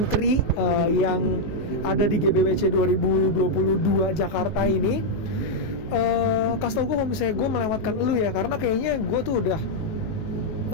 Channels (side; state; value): right; late; 18 ms